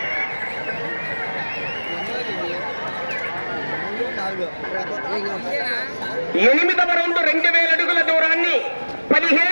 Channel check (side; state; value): both; inverted; correlation -1.00